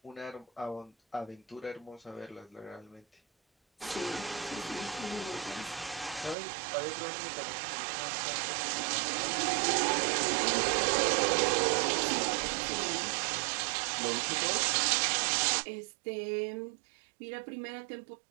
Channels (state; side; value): drops out; left; at 6.4 s